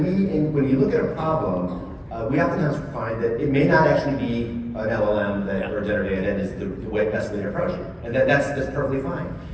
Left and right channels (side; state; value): both; identical; correlation 1.00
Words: you look at a problem, we oftentimes find that it may not actually be an LLM or generative AI that is the best way to approach it, and that's perfectly fine.